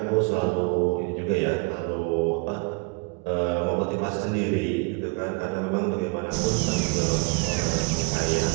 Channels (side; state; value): left; quieter; 31.7 dB